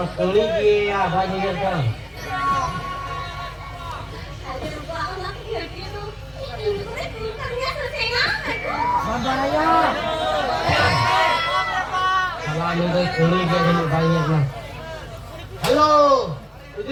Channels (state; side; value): identical; both; correlation 1.00